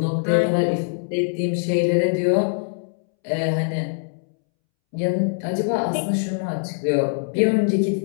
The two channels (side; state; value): right; silent; 64 dB below the other